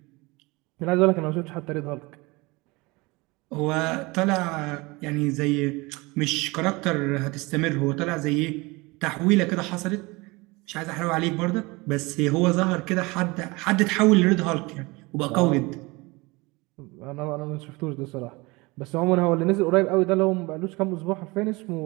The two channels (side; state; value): left; quieter; 24.3 dB